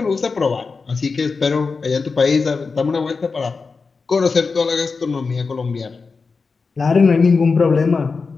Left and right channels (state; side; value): quieter; right; 4.6 dB